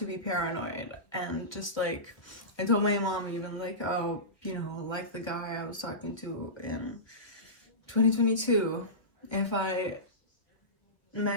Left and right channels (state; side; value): late; right; 1.1 ms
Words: be paranoid. And just like I told my mom even like, oh, you know, like the guy I was talking to in 2022, if I met